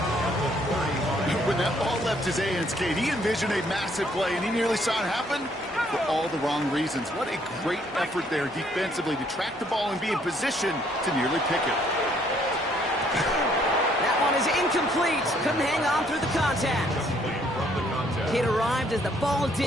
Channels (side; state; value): both; normal; correlation 0.66